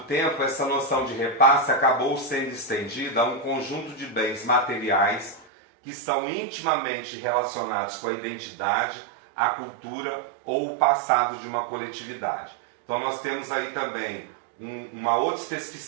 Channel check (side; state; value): left; drops out; at 5.5 s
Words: tempo, essa noção de repasse acabou sendo estendida a um conjunto de bens materiais que são intimamente relacionados com a identidade, a cultura ou o passado de uma coletividade. Então nós temos aí também uma outra